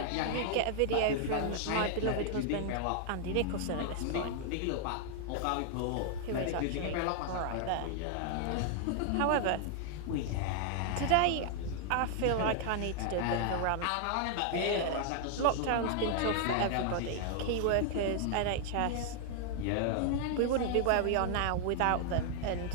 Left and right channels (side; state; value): both; different; correlation 0.00